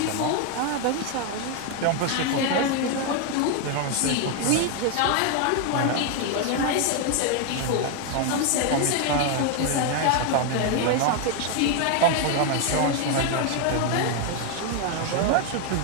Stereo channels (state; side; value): different; both; correlation 0.01